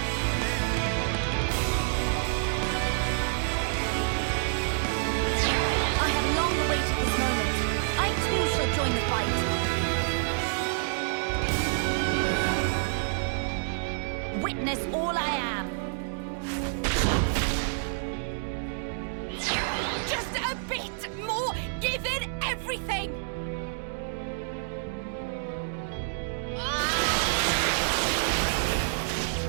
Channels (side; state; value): left; silent; digital silence